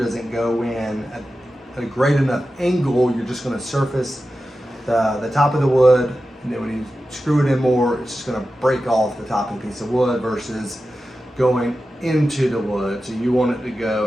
go in at a great enough angle, you're just going to surface the top of the wood, and then when you screw it in more, it's just going to break off the top of the piece of wood versus going into the wood. So you want it to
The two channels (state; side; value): normal; both; correlation 0.92